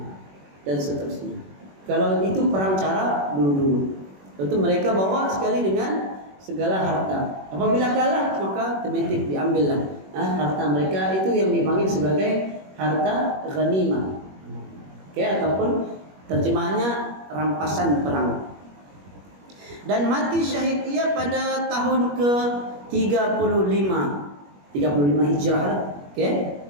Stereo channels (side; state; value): left; late; 21 ms